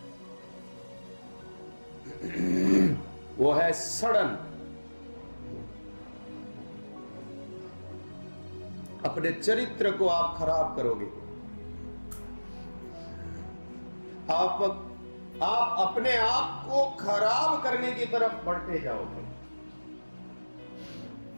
वो है सड़न। अपने चरित्र को आप खराब करोगे। आप अपने आप को खराब करने की तरफ बढ़ते जाओगे।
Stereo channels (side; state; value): both; inverted; correlation -1.00